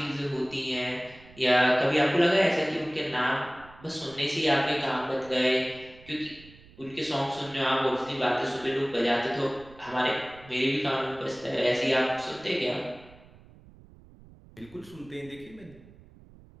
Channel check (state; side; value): noise; right; rumble, 23 dB below the sound